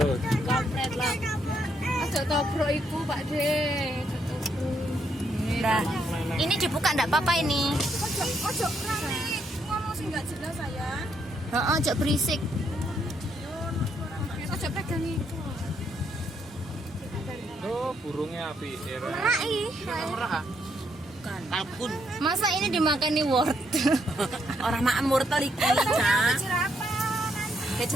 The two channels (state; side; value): normal; both; correlation 0.75